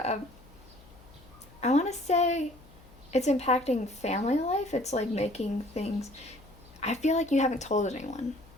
I want to say it's impacting family life. It's like making things, I feel like you haven't told anyone.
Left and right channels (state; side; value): noise; left; hum, 24 dB below the sound